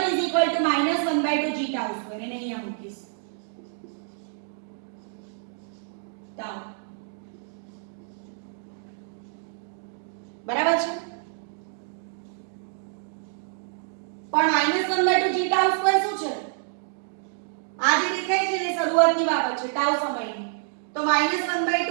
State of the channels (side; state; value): left; silent; digital silence